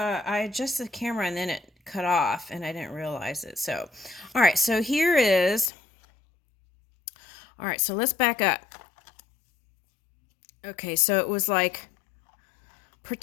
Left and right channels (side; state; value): right; drops out; at 5.7 s